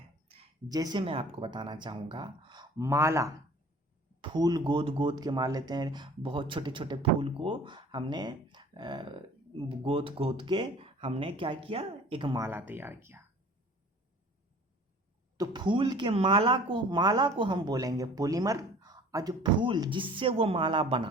जैसे मैं आपको बताना चाहूँगा, माला, फूल गोद गोद के मार लेते हैं, बहुत छोटे छोटे फूल को हमने गोद गोद के हमने क्या किया, एक माला तैयार किया। तो फूल के माला को हम बोलेंगे पॉलीमर, और जो फूल जिससे वो माला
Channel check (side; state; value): both; normal; correlation 0.47